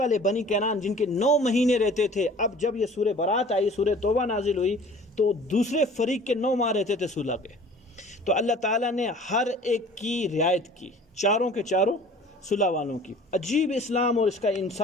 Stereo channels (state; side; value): normal; both; correlation 0.47